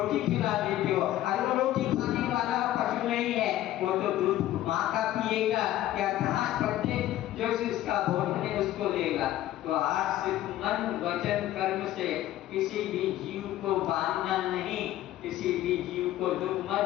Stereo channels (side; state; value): right; quieter; 13.8 dB